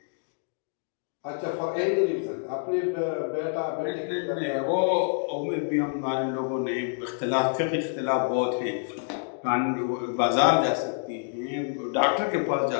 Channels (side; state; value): right; silent; digital silence